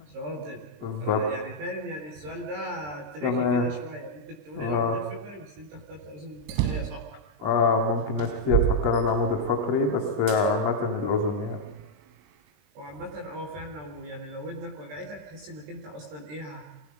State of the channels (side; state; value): left; late; 20 ms